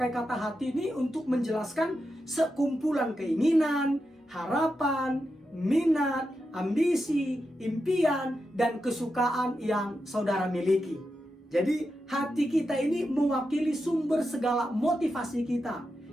kata hati ini untuk menjelaskan sekumpulan keinginan, harapan, minat, ambisi, impian, dan kesukaan yang saudara miliki. Jadi hati kita ini mewakili sumber segala motivasi kita,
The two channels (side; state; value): both; normal; correlation 0.88